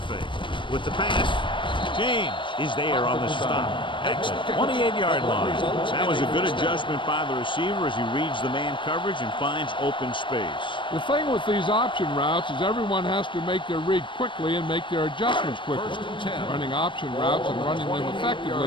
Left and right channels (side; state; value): right; late; 0.24 ms